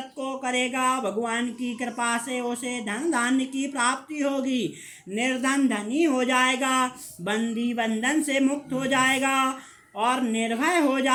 को करेगा भगवान की कृपा से उसे धन धान्य की प्राप्ति होगी। निर्धन धनी हो जाएगा, बंदी बंधन से मुक्त हो जाएगा और निर्भय हो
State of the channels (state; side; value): identical; both; correlation 1.00